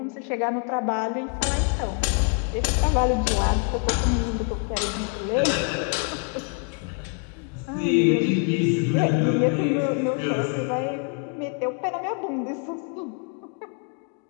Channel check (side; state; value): right; quieter; 37.6 dB